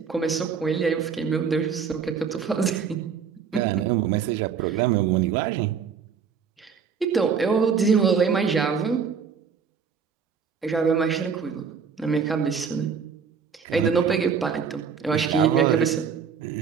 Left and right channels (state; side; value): quieter; left; 6.4 dB